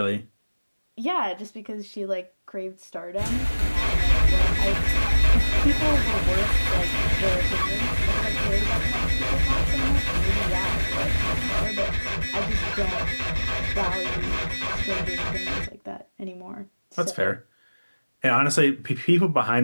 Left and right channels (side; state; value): both; inverted; correlation -1.00